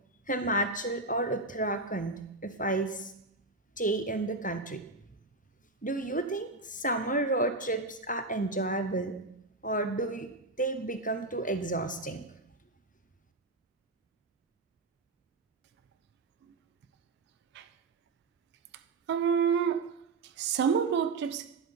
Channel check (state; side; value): quieter; left; 3.3 dB